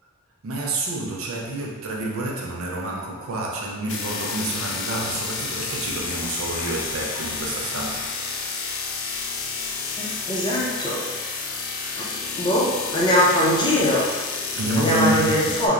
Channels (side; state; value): both; normal; correlation 0.20